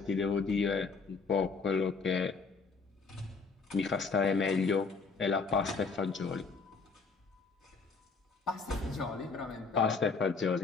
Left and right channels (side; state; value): right; quieter; 4.6 dB